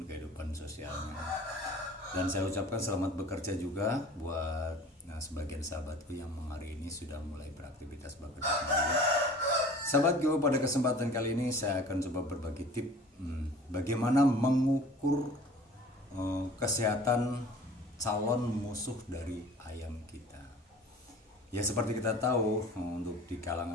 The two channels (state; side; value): normal; both; correlation 0.45